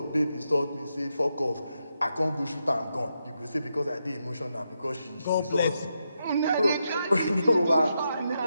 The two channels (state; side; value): inverted; both; correlation -0.84